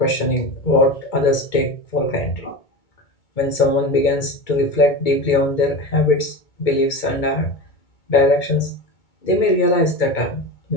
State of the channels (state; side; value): late; right; 2.2 ms